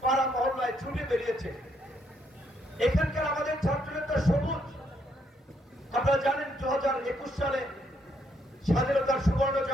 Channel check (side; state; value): both; normal; correlation 0.73